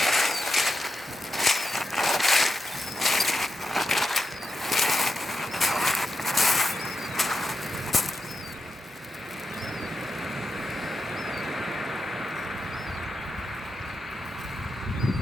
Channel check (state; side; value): normal; both; correlation 0.88